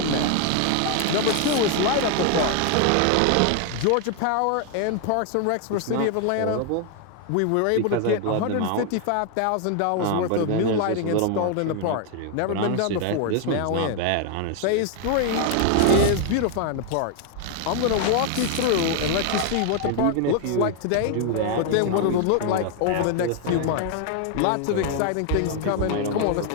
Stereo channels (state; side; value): different; both; correlation 0.00